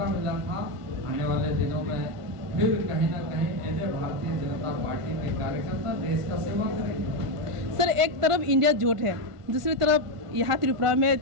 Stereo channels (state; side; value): late; left; 1.5 ms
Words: मिला था, आने वाले दिनों में फिर कहीं ना कहीं ऐसे भारतीय जनता पार्टी के कार्यकर्ता देश का सेवा करेंगे। सर, एक तरफ इंडिया जोट है, दूसरी तरफ यहाँ त्रिपुरा में